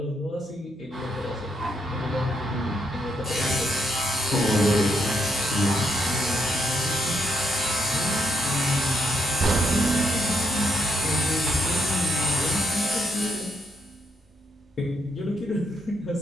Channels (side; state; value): both; normal; correlation 0.77